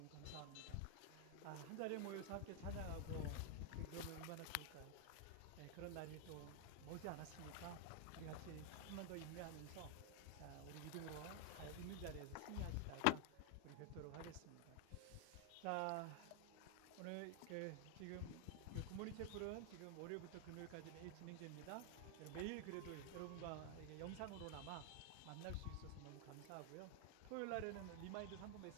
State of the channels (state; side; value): different; both; correlation 0.00